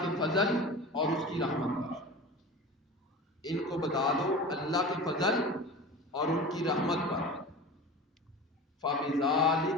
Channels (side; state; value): both; normal; correlation 0.34